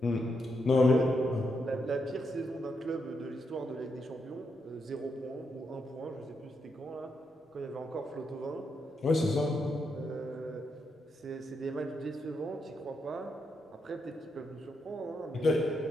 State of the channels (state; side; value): normal; both; correlation 0.81